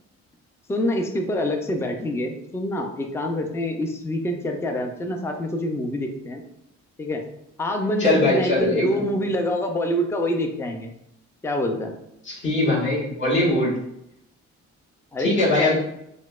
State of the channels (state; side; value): normal; both; correlation 0.40